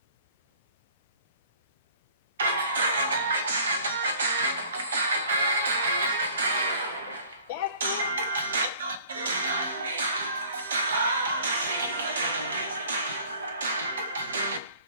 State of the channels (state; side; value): inverted; both; correlation -0.52